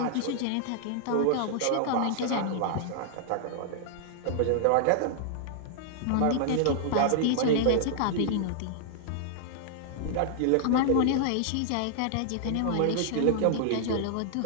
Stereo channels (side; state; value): both; different; correlation -0.01